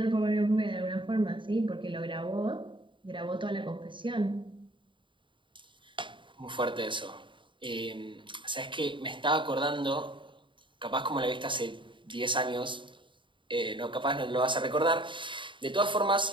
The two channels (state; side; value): late; left; 0.24 ms